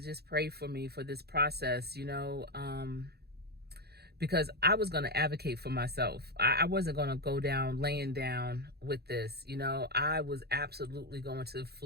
pray for me for this process, because I was going to advocate for myself. I wasn't going to go down laying down with this. I was absolutely going to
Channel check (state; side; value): late; left; 0.47 ms